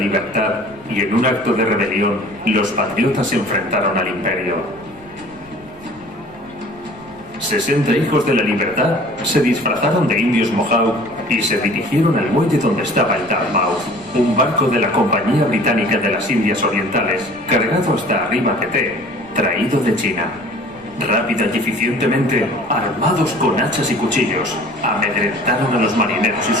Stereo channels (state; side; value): noise; left; rumble, 25 dB below the sound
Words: y en un acto de rebelión los patriotas se enfrentaron al imperio. 60 hijos de la libertad se disfrazaron de indios Mohawk y se dirigieron al muelle donde estaba el Dartmouth, un barco de la Compañía Británica de las Indias Orientales, cargado hasta arriba de té, traído de China. Rápida y eficientemente, armados con hachas y cuchillos, amedrentaron a los marineros y